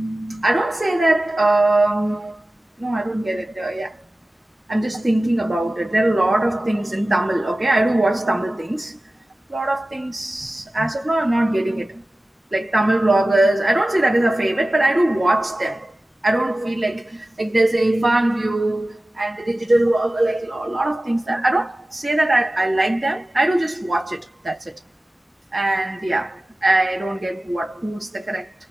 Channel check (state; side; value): normal; both; correlation 0.97